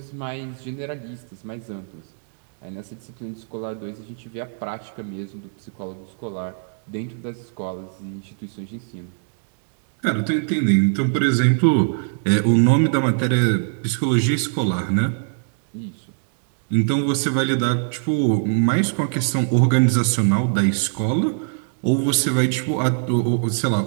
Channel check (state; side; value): silent; left; digital silence